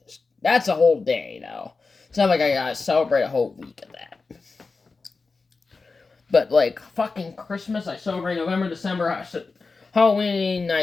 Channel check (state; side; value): quieter; right; 4.2 dB